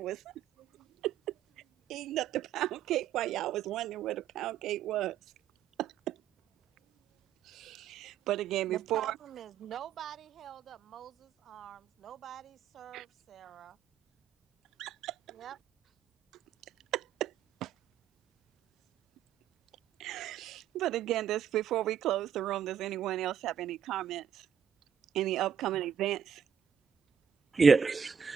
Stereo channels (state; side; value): quieter; left; 8.2 dB